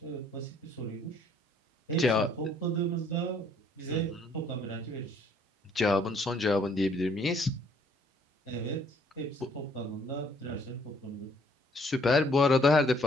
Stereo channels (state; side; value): normal; both; correlation 0.63